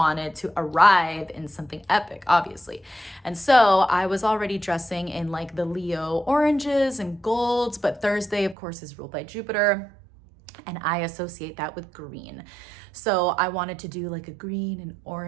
to arrive in something epic, obviously. And so I was already dressing in like the Leo oranges and golds, but Thursday, of course, is ruled by Jupiter, and I associate that with green. So I wanted to do like a green and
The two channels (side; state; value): left; drops out; at 8.6 s